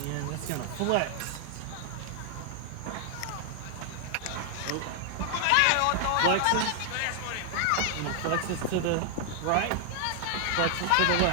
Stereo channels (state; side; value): different; both; correlation 0.00